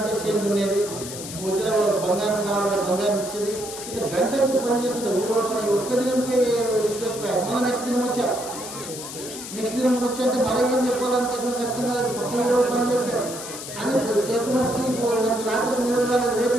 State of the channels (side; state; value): left; noise; hiss, 10 dB below the sound